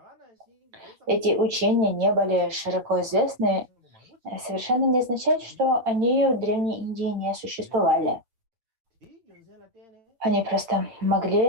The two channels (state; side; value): late; left; 8.7 ms